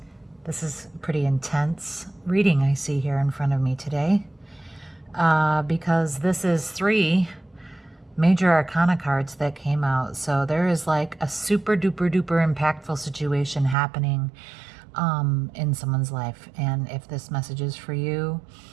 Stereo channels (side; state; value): left; drops out; at 13.8 s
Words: This is pretty intense reading I see here in front of me today because this is 3 major arcana cards that came out. So there is like a super duper duper impactful situation happening in someone's life. And if this message is for you,